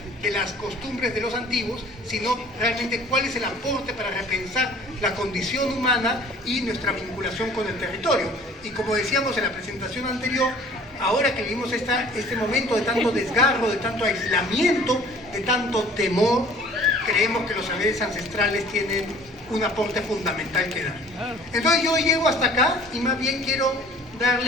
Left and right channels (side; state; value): both; normal; correlation 0.51